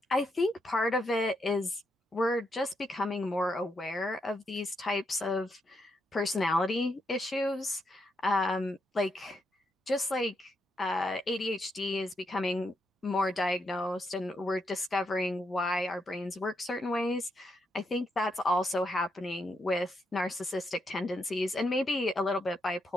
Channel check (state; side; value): normal; both; correlation 0.80